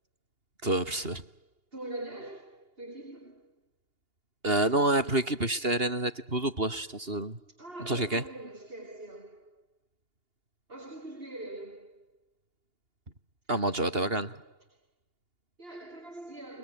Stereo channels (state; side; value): late; left; 2.8 ms